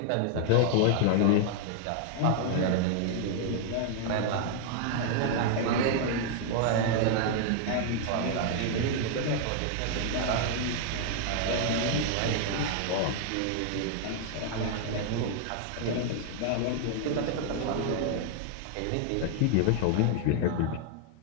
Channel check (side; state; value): both; different; correlation 0.00